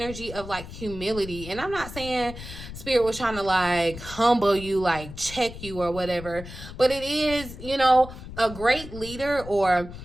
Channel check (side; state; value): left; noise; rumble, 12 dB below the sound